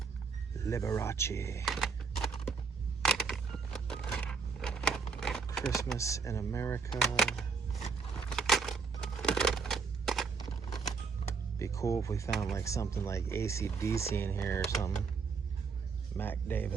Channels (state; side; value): quieter; left; 5.1 dB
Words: Liberace. Christmas in America. Be cool if we found like something like AC/DC in here or something. Mac